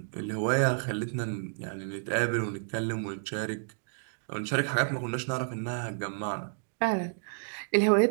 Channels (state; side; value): silent; left; digital silence